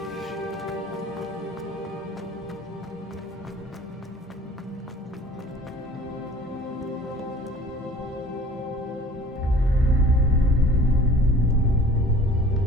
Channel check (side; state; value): both; normal; correlation 0.48